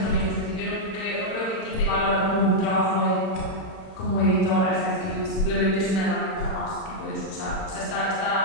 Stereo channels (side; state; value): right; late; 31 ms